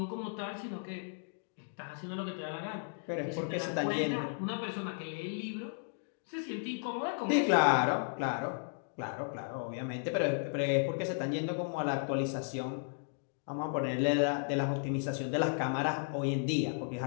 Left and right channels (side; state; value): right; silent; digital silence